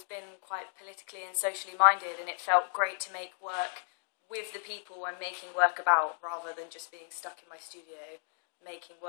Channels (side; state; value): right; silent; digital silence